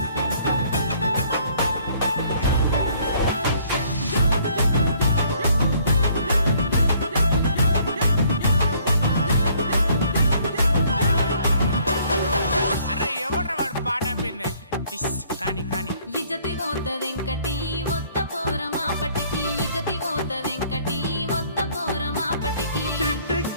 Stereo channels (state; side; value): inverted; both; correlation -0.61